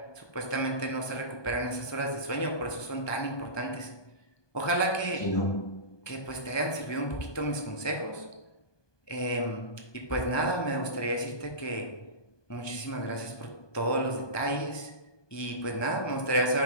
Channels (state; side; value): late; right; 1.2 ms